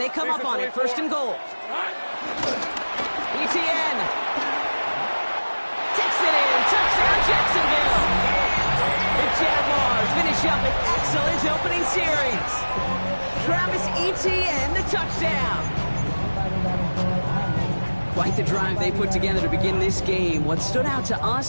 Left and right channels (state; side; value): inverted; both; correlation -1.00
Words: come up on it. 1st and goal. Etienne. Takes it in. Touchdown, Jacksonville. The Jaguars finish up an excellent opening series. Travis Etienne, the touchdown. Quite the drive they put together to begin this game. What stood out to